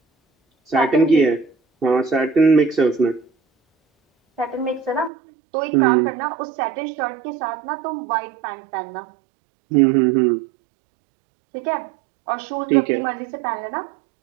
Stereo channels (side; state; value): left; drops out; at 5.1 s